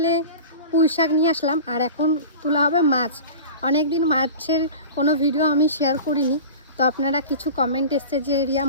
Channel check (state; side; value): inverted; both; correlation -0.35